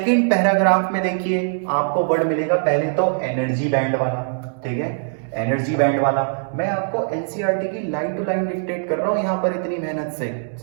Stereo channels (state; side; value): silent; left; digital silence